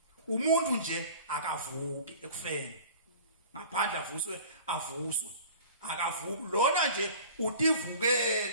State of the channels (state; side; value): inverted; both; correlation -0.43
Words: Umuntu nje akavuki ekufeni. Ngaphandle avuswe akavuki lona nje